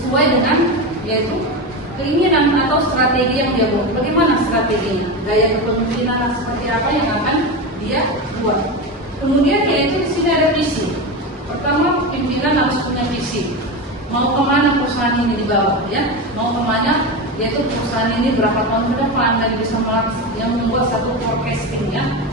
dengan yaitu keinginan atau strategi yang dia buat. Bagaimana strateginya? Gaya kepemimpinan seperti apa yang akan dia buat. Kemudian yaitu di sini ada visi. Pertama, pimpinan harus punya visi. Mau kemana perusahaan ini dibawa, ya? Mau kemana? Yaitu perusahaan ini berapa tahun ke depan dan bisa yang membuat satu forecasting, ya,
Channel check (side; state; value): both; normal; correlation 0.19